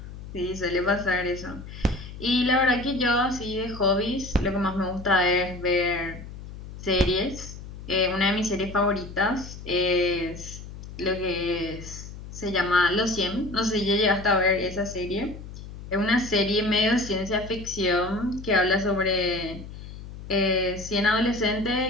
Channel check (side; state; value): left; noise; hum, 13 dB below the sound